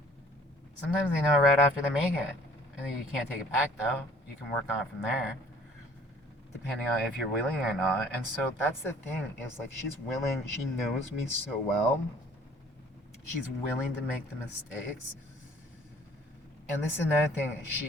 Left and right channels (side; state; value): both; normal; correlation 0.54